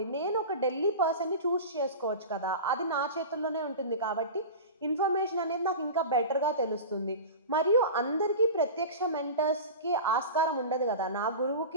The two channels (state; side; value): inverted; both; correlation -0.30